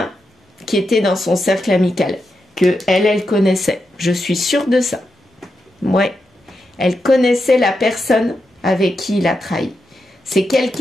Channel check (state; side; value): normal; both; correlation 0.86